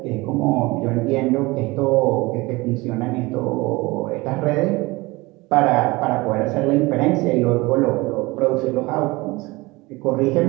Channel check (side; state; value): left; quieter; 22.5 dB